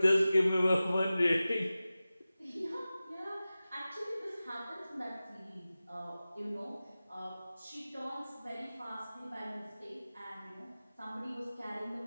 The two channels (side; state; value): both; inverted; correlation -0.96